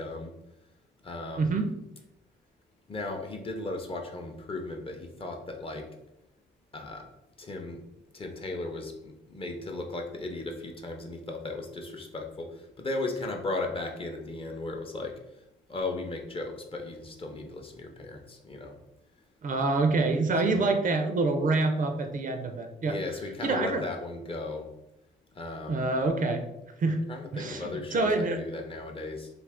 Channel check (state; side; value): normal; both; correlation 0.53